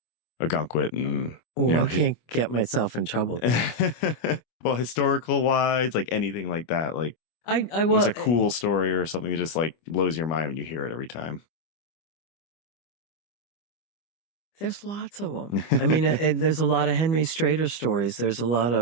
Ogunquit? And I can't get myself in trouble. Well, historical wise, like anything like that, like what's a cool story or something that just like blows your mind when you hear it every time? There's lots of them. I mean, there's a lot of Henry Strader stories. There's a lot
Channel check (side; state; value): right; late; 25 ms